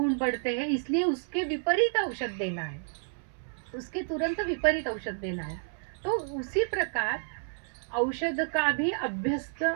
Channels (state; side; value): silent; left; 58 dB below the other